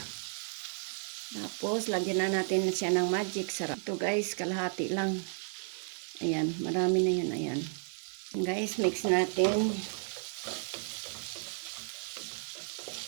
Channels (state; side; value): silent; left; 56 dB below the other